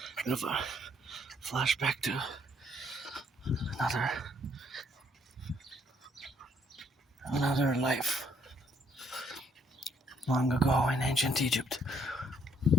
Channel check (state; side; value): normal; both; correlation 0.68